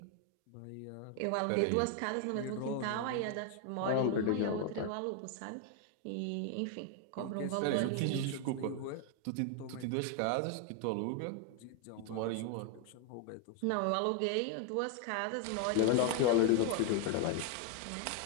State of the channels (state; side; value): different; both; correlation 0.01